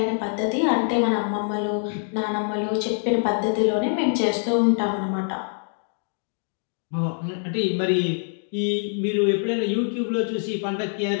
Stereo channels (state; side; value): silent; right; 62 dB below the other